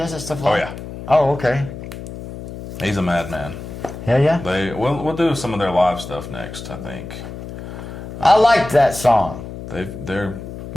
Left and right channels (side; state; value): left; noise; hum, 11 dB below the sound